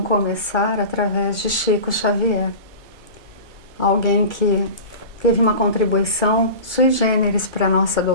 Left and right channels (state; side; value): late; left; 2.2 ms